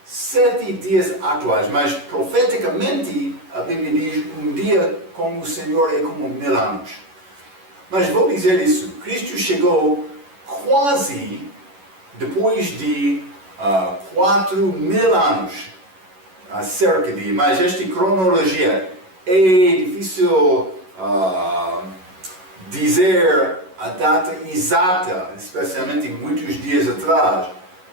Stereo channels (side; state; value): left; late; 11 ms